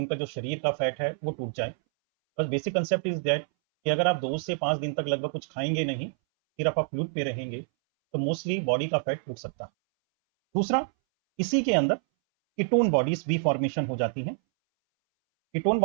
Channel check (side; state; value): left; silent; 60 dB below the other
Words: जो शरीर का फैट है वो टूट जाए। बस बेसिक कंसेप्ट इज दैट कि अगर आप 2 से 5 दिन तक लगभग कुछ खाएंगे नहीं, सिर्फ आप फ्लूइड पे रहेंगे, तो मोस्टली बॉडी का फैट टूट सकता है। दूसरा, इसी के अंदर कीटोन बॉडीज भी फॉर्मेशन हो जाती हैं। कीटोन